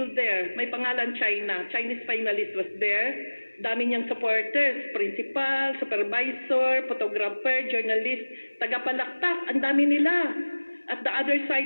there. May pangalan China. Chinese finalist was there. Dami niyang supporters, principal, supervisor, photographer, journalist, tagapalakpak, ang dami nila. At the other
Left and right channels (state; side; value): inverted; both; correlation -1.00